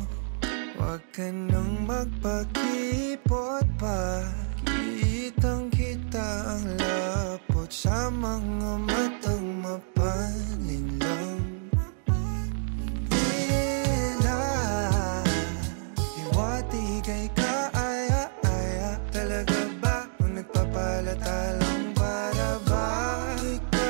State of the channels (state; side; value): silent; left; digital silence